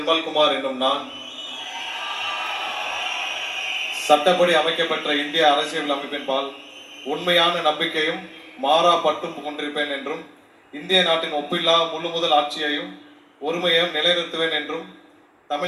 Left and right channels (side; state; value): both; identical; correlation 1.00